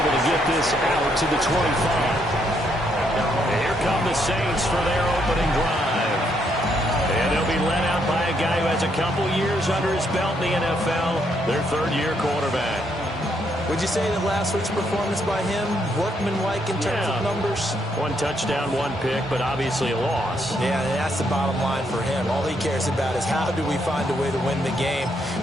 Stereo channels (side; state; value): both; normal; correlation 0.74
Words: able to get this out to the 25. Here come the Saints for their opening drive. And they'll be led out by a guy who has a couple years under his belt in the NFL, their third-year quarterback. Would you say that last week's performance by him, workmanlike in terms of numbers? One touchdown, one pick, but obviously a loss. Yeah, that's the bottom line for him. All he cares about is how do we find a way to win the game.